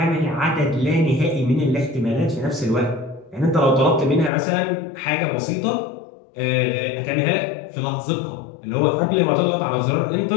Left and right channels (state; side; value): drops out; right; at 4.3 s